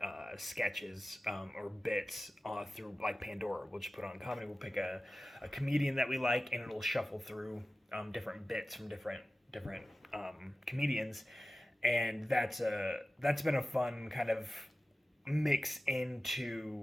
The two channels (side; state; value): both; normal; correlation 0.95